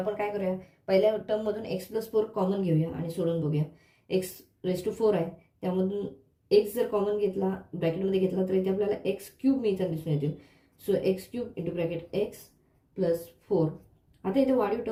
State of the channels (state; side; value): identical; both; correlation 1.00